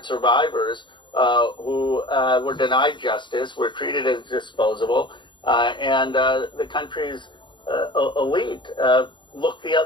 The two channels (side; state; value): right; late; 0.23 ms